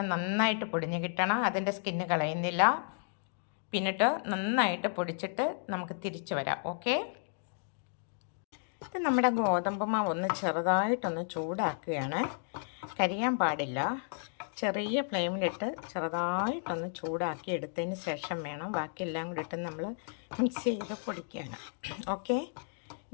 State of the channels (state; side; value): silent; right; digital silence